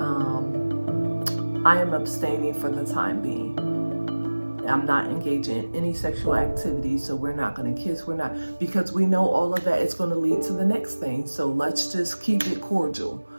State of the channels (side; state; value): both; inverted; correlation -1.00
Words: I am abstaining for the time being. I'm not engaging in any sexual activity, so we're not going to kiss. We're not, because we know all of that is going to lead to the next thing. So let's just keep it cordial,